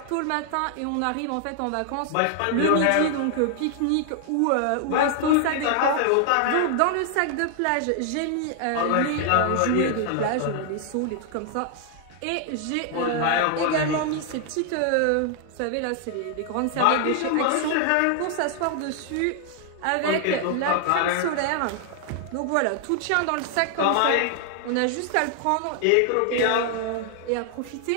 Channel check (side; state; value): both; different; correlation 0.00